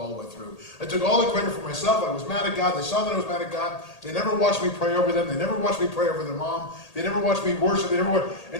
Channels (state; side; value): late; right; 1.8 ms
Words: the way through. I took all the credit for myself. I was mad at God. They saw that I was mad at God. They never watched me pray over them. They never watched me pray over their mom. They never watched me worship.